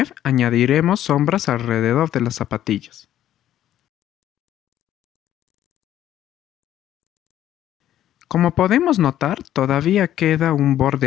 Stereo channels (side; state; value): right; quieter; 11.9 dB